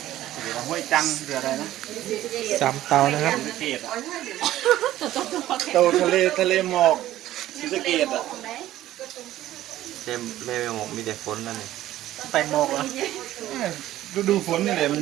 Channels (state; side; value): quieter; left; 14.1 dB